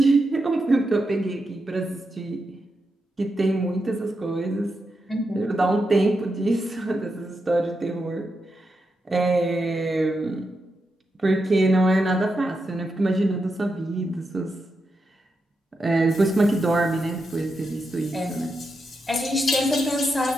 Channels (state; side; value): normal; both; correlation 0.86